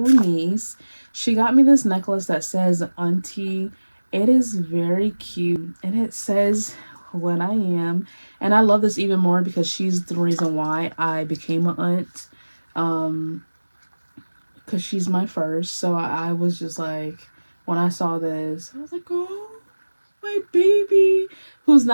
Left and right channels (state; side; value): inverted; both; correlation -1.00